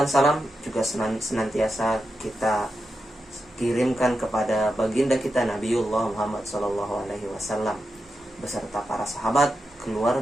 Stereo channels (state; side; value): normal; both; correlation 0.88